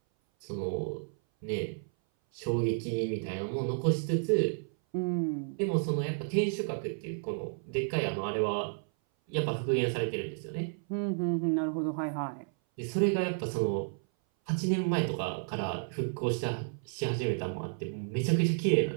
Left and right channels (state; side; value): silent; left; 57 dB below the other